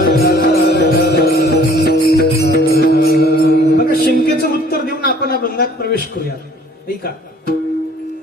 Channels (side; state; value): both; normal; correlation 0.54